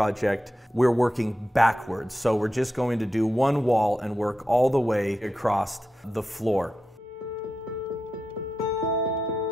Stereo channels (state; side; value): normal; both; correlation 0.89